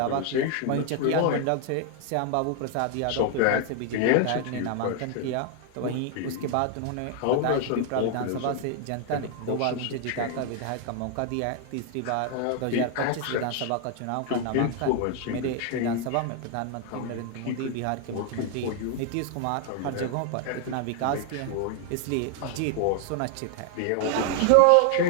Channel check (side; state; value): both; different; correlation 0.00